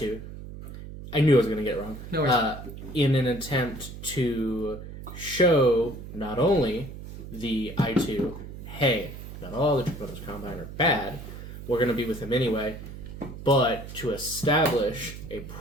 I knew I was going to get it wrong. No worries. In an attempt to show not only the I2, hey, not all the Draconis Combine are bad, we're going to be with him anyway, but to establish a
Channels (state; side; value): noise; right; hum, 12 dB below the sound